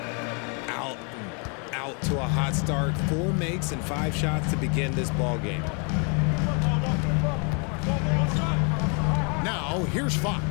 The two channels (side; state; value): right; quieter; 36.5 dB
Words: Out to a hot start. 4 makes and 5 shots to begin this ball game. Now, here's